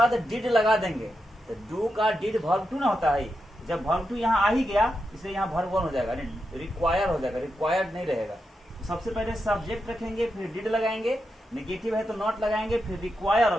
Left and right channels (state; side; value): normal; both; correlation 0.87